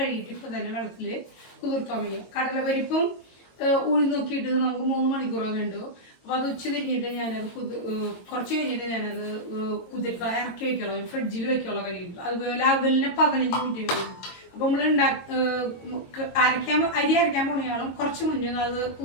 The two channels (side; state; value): right; late; 22 ms